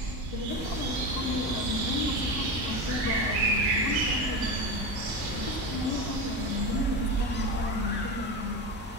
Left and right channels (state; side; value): normal; both; correlation 0.21